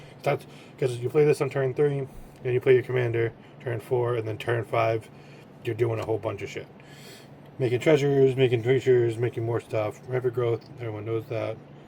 That's because you play this on turn 3, and you play your commander turn 4, and then turn 5, you're doing a whole bunch of shit. Making treasures, making creatures, making more stuff. Rapid growth, everyone knows that.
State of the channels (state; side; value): identical; both; correlation 1.00